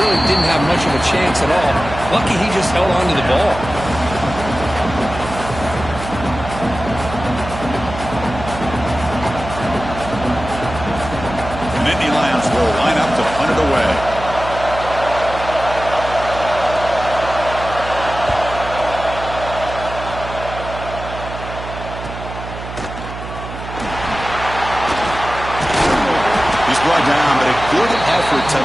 didn't have much of a chance at all. Lucky he just held on to the ball. brought down, but a good effort to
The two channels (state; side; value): noise; right; hum, 10 dB below the sound